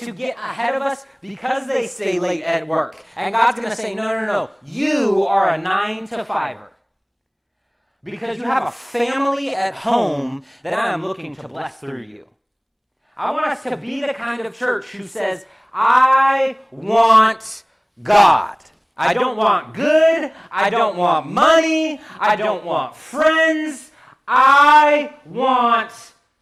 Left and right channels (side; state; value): both; identical; correlation 1.00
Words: ahead of us because they stay late at work. And God's going to say, no. You are a 9 to 5er. Because you have a family at home that I am looking to bless through you. I want us to be the kind of church who says, I want God. I don't want good. I don't want money. I don't want friends. I want